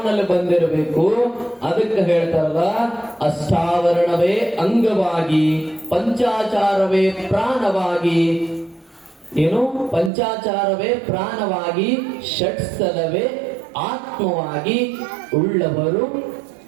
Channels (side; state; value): left; drops out; at 10.1 s